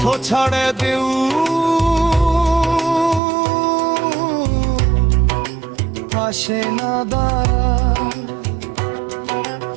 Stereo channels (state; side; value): drops out; left; at 3.2 s